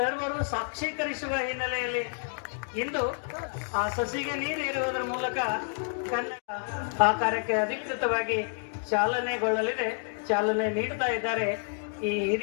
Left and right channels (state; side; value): silent; right; 58 dB below the other